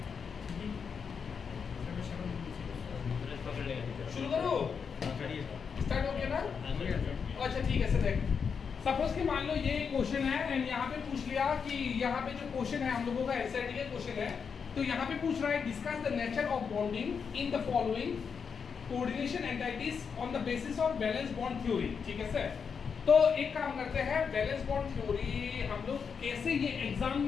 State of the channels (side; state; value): right; quieter; 6.2 dB